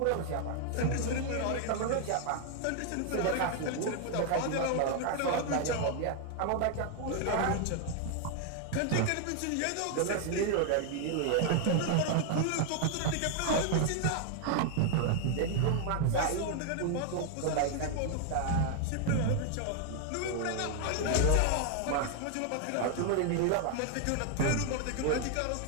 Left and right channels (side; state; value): both; different; correlation 0.00